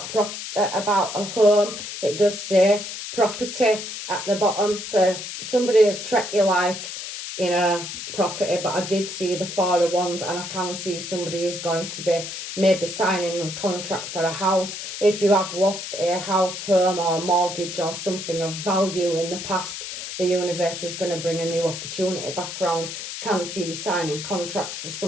a home, it does say property at the bottom. So somebody has treated you like, you know, property, but I did see the Four of Wands, and I can see somebody is going to be maybe signing a contract for a house. If you have lost a house, home or mortgage or something of value in the past, the universe is going to bring a new opportunity back round. Can see you signing contracts for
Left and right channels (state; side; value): noise; left; hiss, 8 dB below the sound